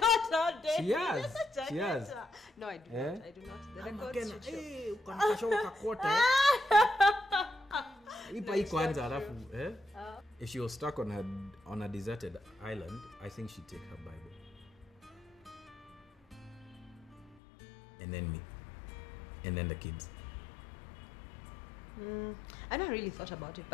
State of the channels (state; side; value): drops out; right; at 17.4 s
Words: know, Denise. She has. She has. No, I do not. I do not. The records Makena, should show. hey, ukanikashoka kakota. Ipa hii kwanza alafu, If she was stuck on a deserted island, I think she'd take her Bible. And then me. And then the kids. I never really thought about it,